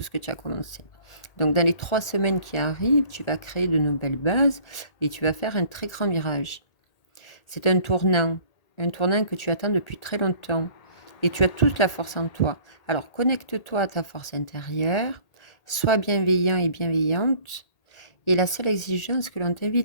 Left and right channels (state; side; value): late; right; 1.8 ms